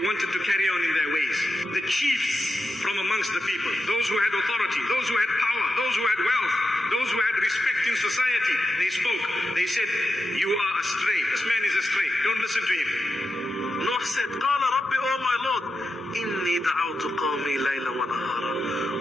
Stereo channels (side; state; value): both; normal; correlation 0.89